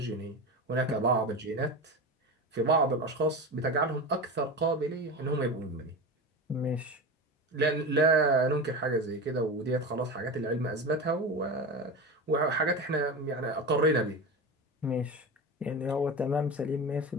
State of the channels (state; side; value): normal; both; correlation 0.25